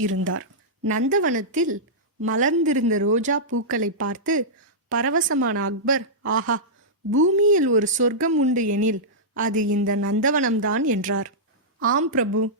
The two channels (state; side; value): normal; both; correlation -0.13